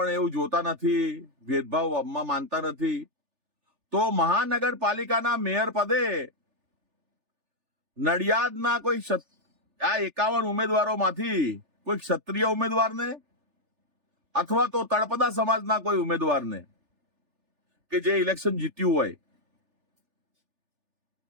એવું જોતા નથી, ભેદભાવમાં માનતા નથી. તો મહાનગરપાલિકાના મેયર પદે નડિયાદના કોઈ આ 51 ઉમેદવારોમાંથી કોઈ ક્ષત્રિય ઉમેદવારને અથવા તો તળપદા સમાજના કોઈ ઉમેદવારને કે જે ઇલેક્શન જીત્યું હોય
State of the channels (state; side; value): late; left; 3.4 ms